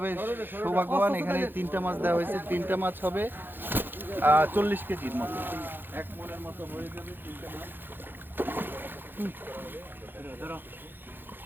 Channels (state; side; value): late; left; 0.097 ms